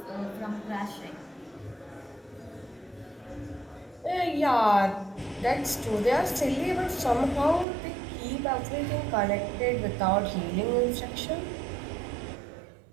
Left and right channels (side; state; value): left; drops out; at 7.7 s